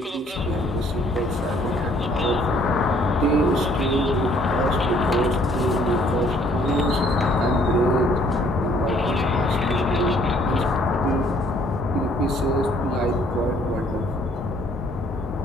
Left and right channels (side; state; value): both; normal; correlation 0.61